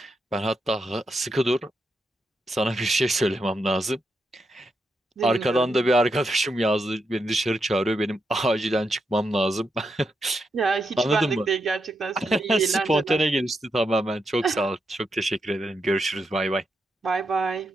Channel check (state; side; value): normal; both; correlation 0.83